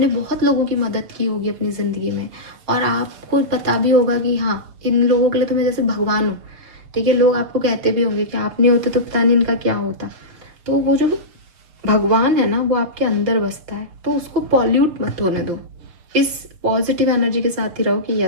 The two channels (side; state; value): left; late; 6.8 ms